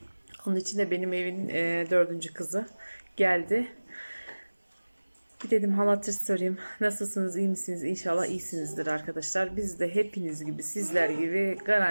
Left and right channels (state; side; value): inverted; both; correlation -1.00